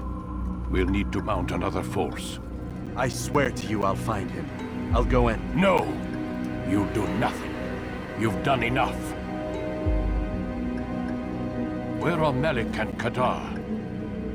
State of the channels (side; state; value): both; identical; correlation 1.00